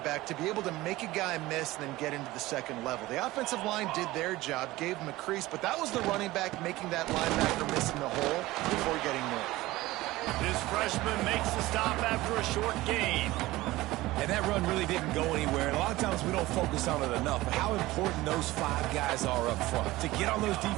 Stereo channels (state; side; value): quieter; left; 18.4 dB